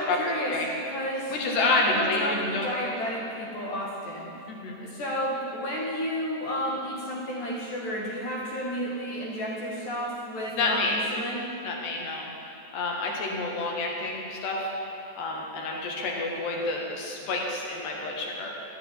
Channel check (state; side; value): late; right; 14 ms